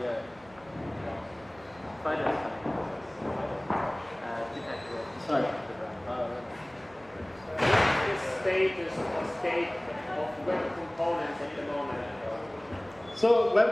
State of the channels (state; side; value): noise; right; hum, 27 dB below the sound